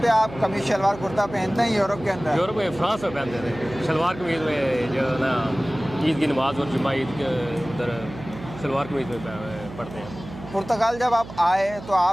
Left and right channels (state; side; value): noise; right; hum, 14 dB below the sound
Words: पे आप कमीज शलवार कुर्ता पहनते हैं यूरोप के अंदर? यूरोप में फ्रांस में पहनते थे शलवार कमीज में, जो है ना ईद की नमाज और जुम्मा ईद के उधर शलवार कमीज में पढ़ते हैं। पुर्तगाल जब आप आए तो